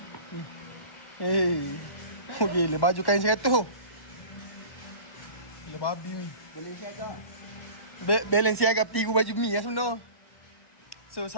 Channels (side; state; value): right; late; 1.1 ms